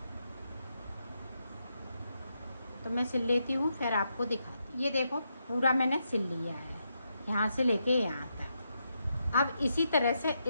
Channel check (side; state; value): both; inverted; correlation -0.82